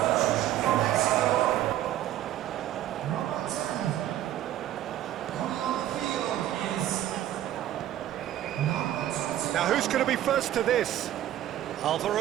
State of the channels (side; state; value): left; quieter; 12.7 dB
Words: Now who's going to be first to this?